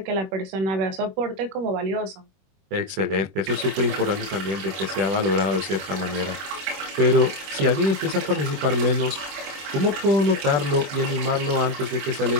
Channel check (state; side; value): late; left; 21 ms